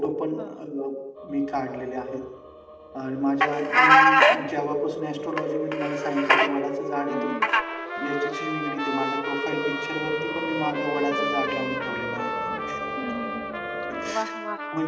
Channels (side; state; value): both; identical; correlation 1.00